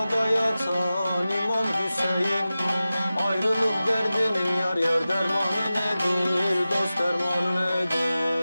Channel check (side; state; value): both; inverted; correlation -0.95